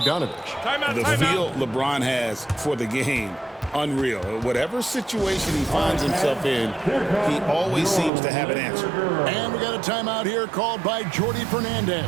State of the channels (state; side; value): drops out; left; at 8.1 s